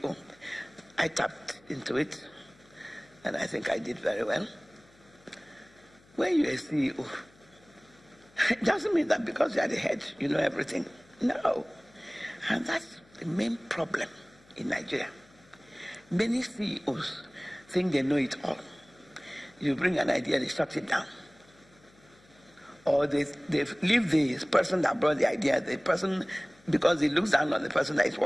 I tapped into it, and I think I did very well. When you're a CEO, it doesn't mean that because you are the head, you know everything. No. And that's the main problem in Nigeria. Many CEOs think they know it all. You bring an idea, they shut it down. Or they leave the person that brought the idea, the person, because he looks down on the person that is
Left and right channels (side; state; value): left; noise; hum, 29 dB below the sound